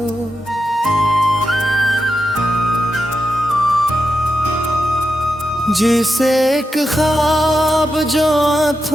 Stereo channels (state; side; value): normal; both; correlation 0.87